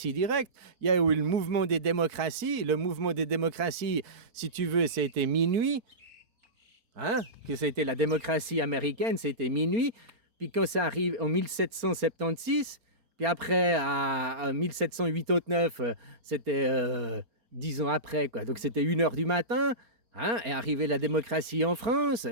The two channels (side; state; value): left; late; 4.3 ms